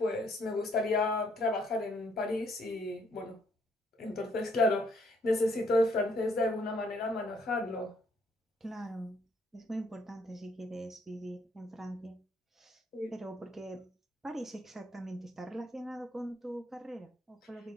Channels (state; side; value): normal; both; correlation 0.68